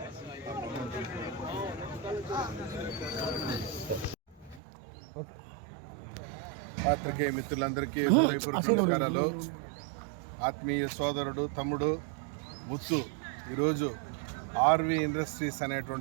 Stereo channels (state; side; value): drops out; left; at 4.6 s